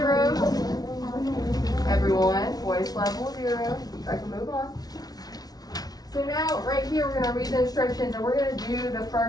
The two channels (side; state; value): right; late; 0.19 ms